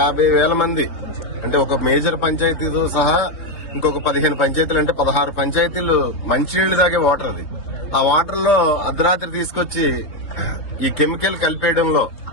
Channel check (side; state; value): right; late; 3.6 ms